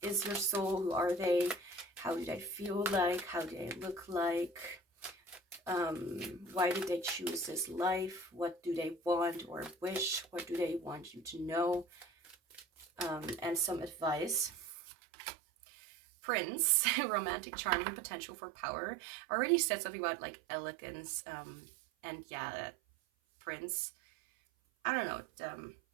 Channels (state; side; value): drops out; left; at 14.7 s